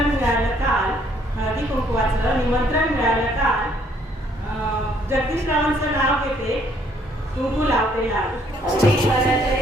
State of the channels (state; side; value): normal; both; correlation 0.65